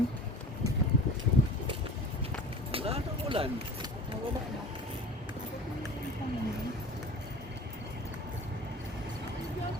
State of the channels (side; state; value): both; normal; correlation 0.39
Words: Wala nang ulan.